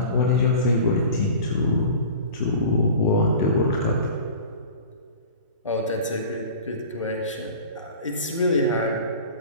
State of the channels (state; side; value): inverted; both; correlation -0.39